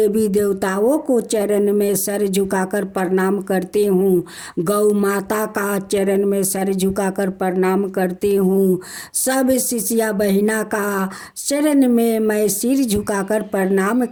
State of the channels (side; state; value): both; identical; correlation 1.00